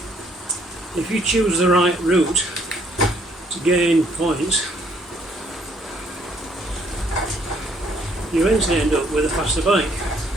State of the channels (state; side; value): normal; both; correlation 0.65